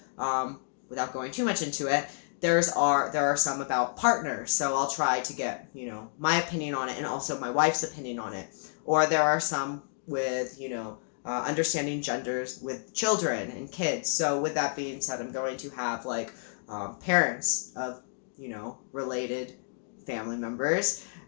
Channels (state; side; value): silent; right; digital silence